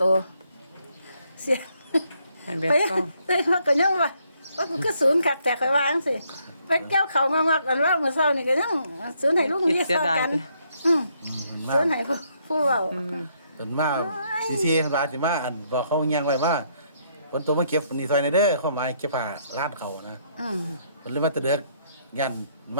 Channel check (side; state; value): both; inverted; correlation -0.72